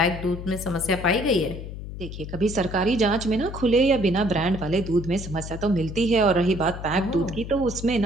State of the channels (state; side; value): noise; left; hum, 9 dB below the sound